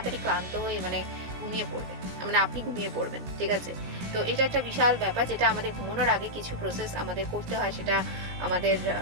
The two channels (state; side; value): late; left; 17 ms